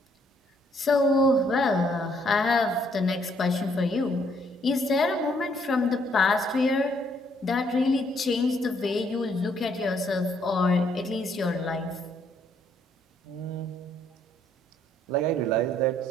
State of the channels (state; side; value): normal; both; correlation 0.68